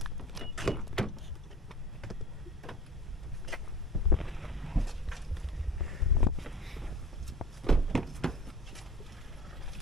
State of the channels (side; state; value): both; normal; correlation 0.41